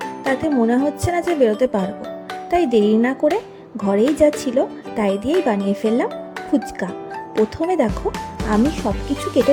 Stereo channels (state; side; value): identical; both; correlation 1.00